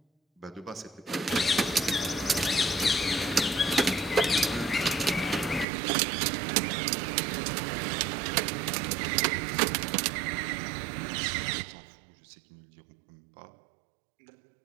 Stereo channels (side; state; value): left; drops out; at 5.7 s